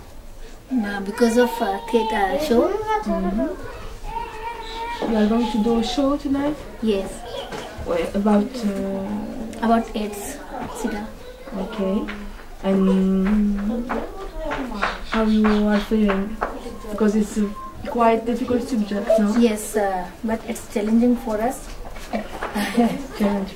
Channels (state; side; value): identical; both; correlation 1.00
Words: Because of theatre show. You are going to do a show tonight? Yes. About AIDS, SIDA. Okay. And how you are feeling? Because it's a quite difficult subject, no? Yes, but it's challenging for us. Challenge